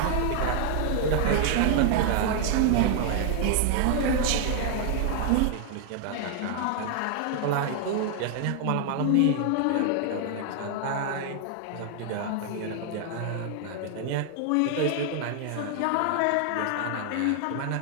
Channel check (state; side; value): different; both; correlation 0.00